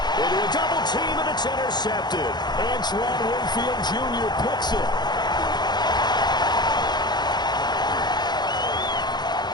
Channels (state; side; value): late; right; 0.21 ms